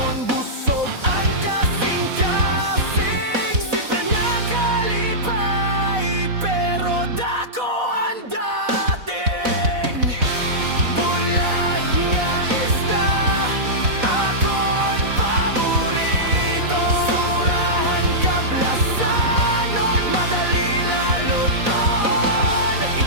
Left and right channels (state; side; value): late; left; 4.1 ms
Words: busog ang kasing-kasing, simple nga kalipay pero dako ang dating. Bulag nga isda akon paborito, surahan kablasanon madali laluton.